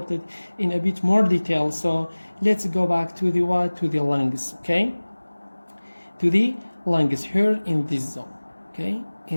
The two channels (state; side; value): inverted; both; correlation -1.00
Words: in a bit more detail. So let's go back to the to the lungs. Okay, to the lungs here in this zone. Okay,